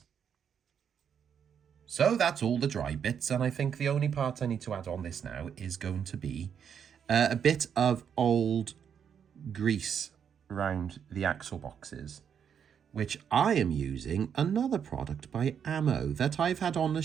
So that's all the dry bits, and I think the only part I need to add on this now is going to be a bit of old grease around the axle boxes, which I am using another product by Ammo that I've had on the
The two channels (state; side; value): quieter; left; 7.8 dB